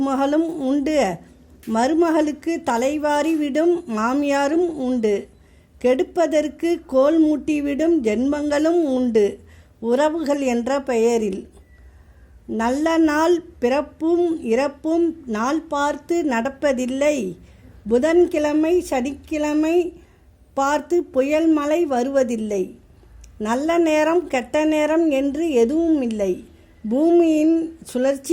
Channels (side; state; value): both; identical; correlation 1.00